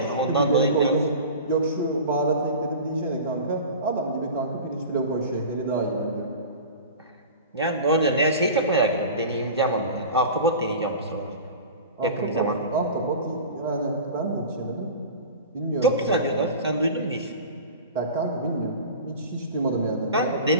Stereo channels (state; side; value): inverted; both; correlation -0.35